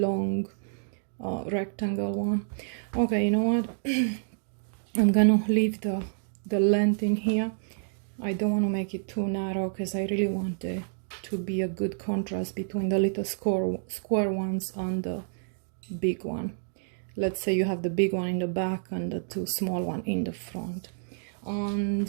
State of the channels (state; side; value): silent; left; digital silence